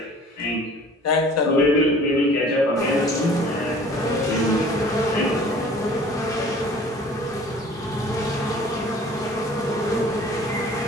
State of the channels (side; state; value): both; normal; correlation 0.49